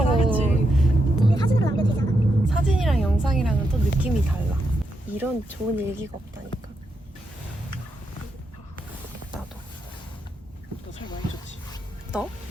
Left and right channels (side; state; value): both; normal; correlation 0.83